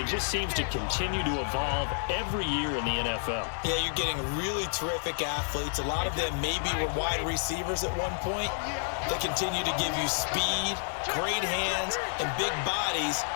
just seems to continue to evolve every year in the NFL. Yeah, you're getting really terrific athletes. A lot of them maybe were wide receivers at one point. They continue to give you speed, great hands, and big bodies,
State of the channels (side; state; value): right; silent; digital silence